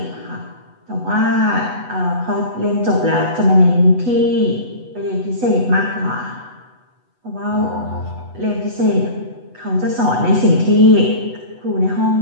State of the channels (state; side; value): late; left; 8.1 ms